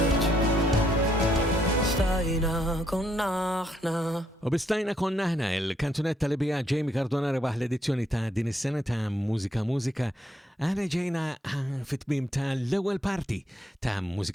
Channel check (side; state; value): both; normal; correlation 0.73